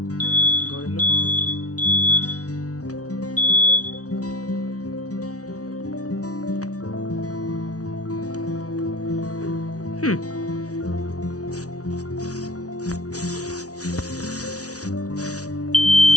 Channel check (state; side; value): late; right; 0.67 ms